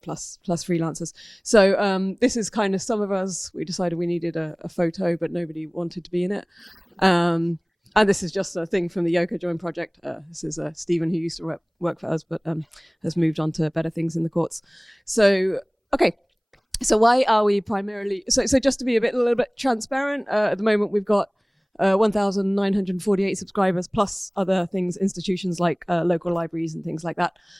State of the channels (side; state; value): both; identical; correlation 1.00